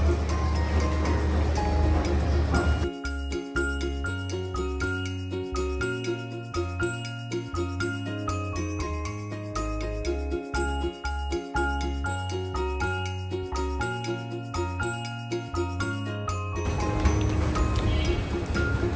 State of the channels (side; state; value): both; identical; correlation 1.00